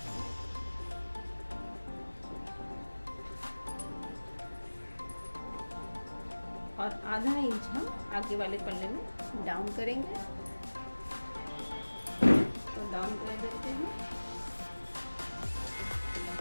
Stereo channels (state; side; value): inverted; both; correlation -1.00